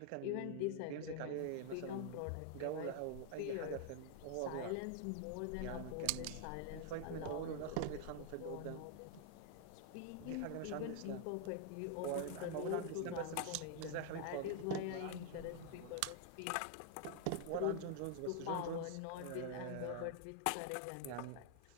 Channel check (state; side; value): different; both; correlation 0.00